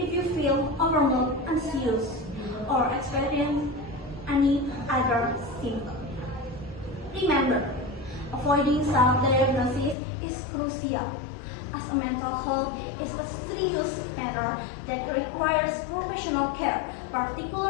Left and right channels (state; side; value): drops out; right; at 10.0 s